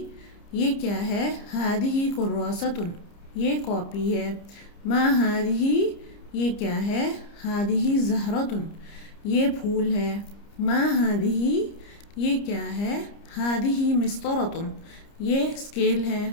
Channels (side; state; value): right; late; 30 ms